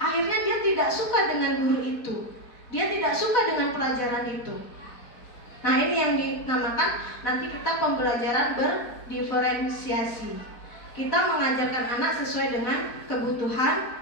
dia tidak suka dengan guru itu, dia tidak suka dengan pelajaran itu. Nah ini yang dinamakan nanti kita pembelajaran berdiferensiasi. Kita mengajarkan anak sesuai dengan kebutuhan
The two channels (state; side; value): late; right; 4.1 ms